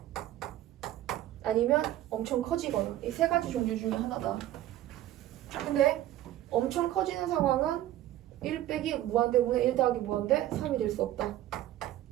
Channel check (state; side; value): quieter; left; 13.7 dB